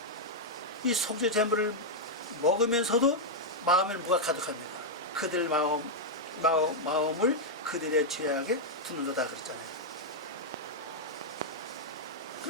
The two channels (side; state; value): both; normal; correlation -0.04